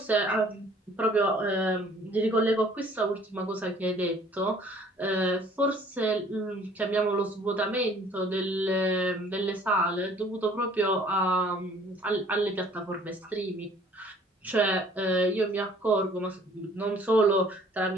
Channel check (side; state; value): both; normal; correlation 0.55